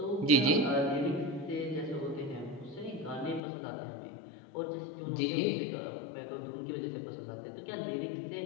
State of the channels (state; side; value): drops out; right; at 3.4 s